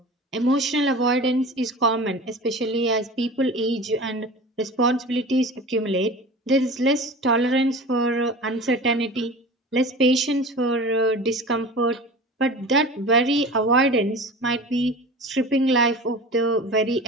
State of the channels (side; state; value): both; normal; correlation 0.35